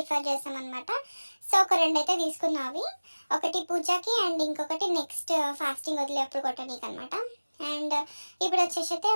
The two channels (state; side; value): inverted; both; correlation -1.00